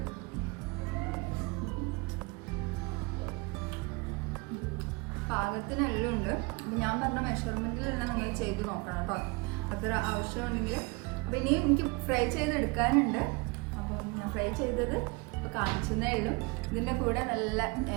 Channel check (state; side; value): quieter; left; 27.6 dB